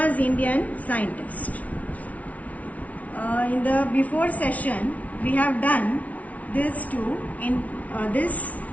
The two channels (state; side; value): late; right; 0.069 ms